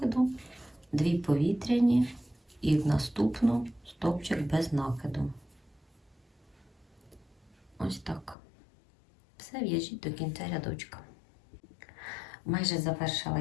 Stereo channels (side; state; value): right; drops out; at 8.3 s